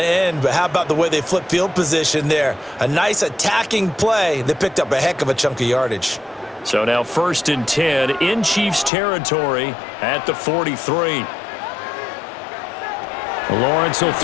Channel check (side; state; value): right; drops out; at 8.9 s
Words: end, but how about the way they flip field position there? A nice attacking play that picked up a heck of a chunk of yardage. So now 1st and 10 in Chiefs territory at the 43. Lawrence will